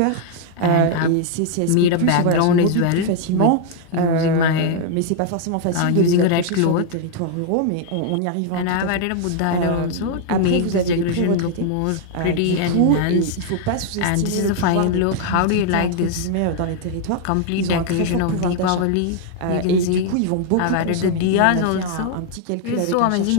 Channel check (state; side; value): different; both; correlation 0.00